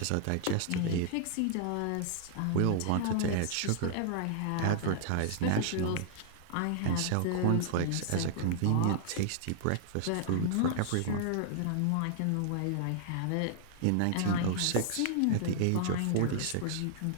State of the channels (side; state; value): both; different; correlation -0.01